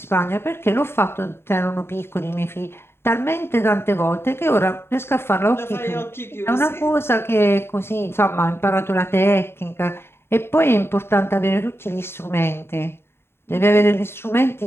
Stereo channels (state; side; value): late; right; 0.11 ms